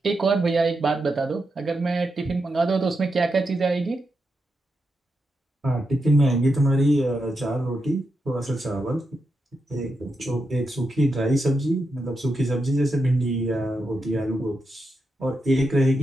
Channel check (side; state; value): both; normal; correlation 0.86